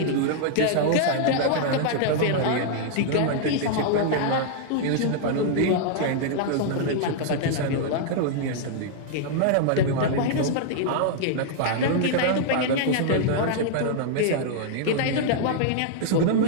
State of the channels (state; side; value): different; both; correlation -0.01